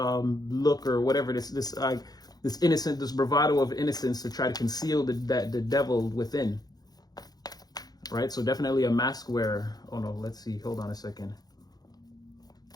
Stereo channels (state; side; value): late; right; 0.19 ms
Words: or whatever, this innocent, this bravado of innocence to try to conceal the devil within, right? So definitely a mask wearer. Oh no, let's see, hold on a second.